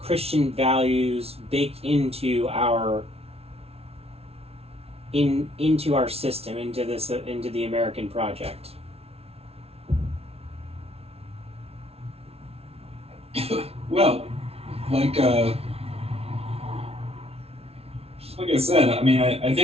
Christian values baked into our system, into the American project? Well, like I said, I mean, I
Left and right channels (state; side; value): late; left; 0.30 ms